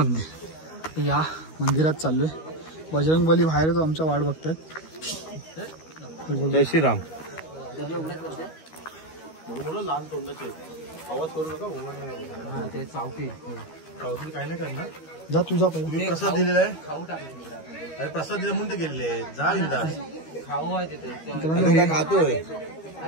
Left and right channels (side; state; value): right; late; 13 ms